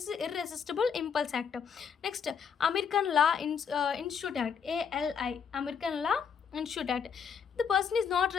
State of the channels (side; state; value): right; quieter; 6.8 dB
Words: is irresistible impulse act. Next, American Law Institute Act, ALI, American Law Institute Act. The person is not